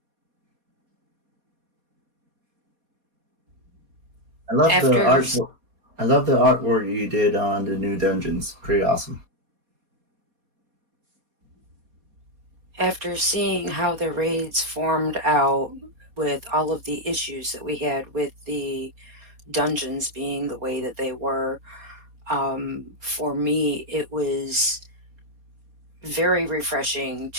I love the After artwork. I love the artwork you did on the new dungeons. Pretty awesome. after seeing how the raids formed out with all of the issues that we had with the dungeons being the way that they were, for me, it was very refreshing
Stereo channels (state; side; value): late; left; 4.2 ms